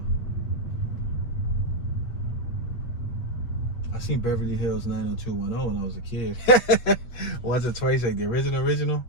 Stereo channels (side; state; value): right; late; 8.4 ms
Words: I seen Beverly Hills 90210 when I was a kid. Once or twice, like the original.